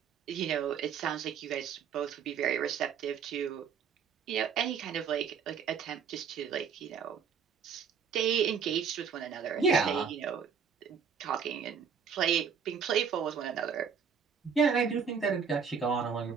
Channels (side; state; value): left; quieter; 6.7 dB